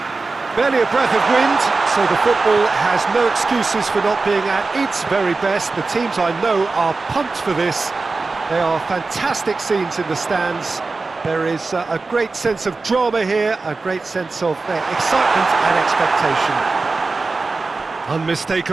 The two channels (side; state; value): left; quieter; 3.8 dB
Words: Barely a breath of wind, so the football has no excuses for not being at its very best. The teams I know are pumped for this. There are fantastic scenes in the stands. There is a great sense of drama here, a great sense of excitement and expectation.